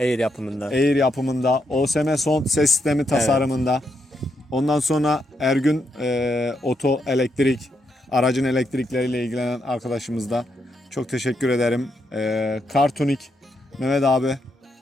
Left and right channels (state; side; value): normal; both; correlation 0.80